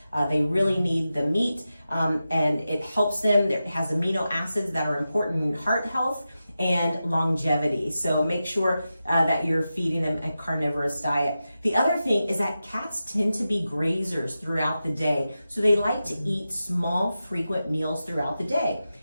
They really need the meat, and it helps them. It has amino acids that are important in heart health and longevity. So make sure that you're feeding them a carnivorous diet. The other thing is that cats tend to be grazers throughout the day. So they like to eat small, frequent meals throughout the day.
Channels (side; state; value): both; inverted; correlation -0.92